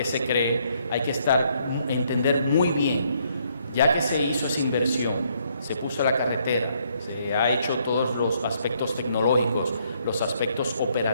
se cree hay que entender muy bien, ya que se hizo esa inversión, se puso la carretera, se ha hecho todos los aspectos tecnológicos, los aspectos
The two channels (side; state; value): both; inverted; correlation -0.70